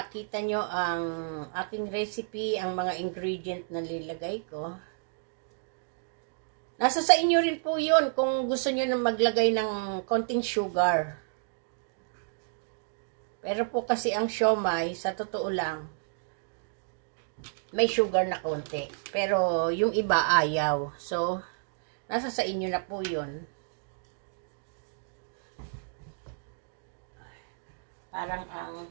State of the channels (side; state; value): left; silent; digital silence